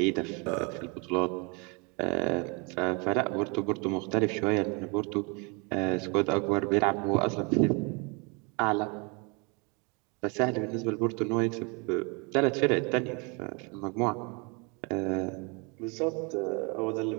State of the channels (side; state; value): left; quieter; 31.4 dB